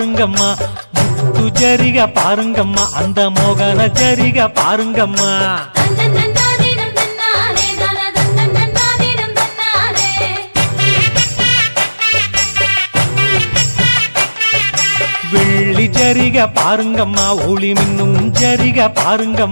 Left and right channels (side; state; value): both; inverted; correlation -1.00